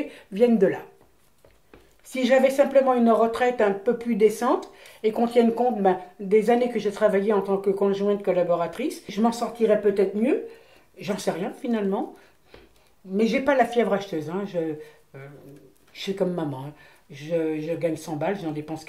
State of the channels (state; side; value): identical; both; correlation 1.00